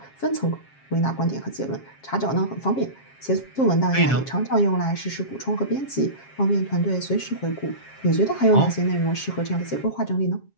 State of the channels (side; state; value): right; late; 7.4 ms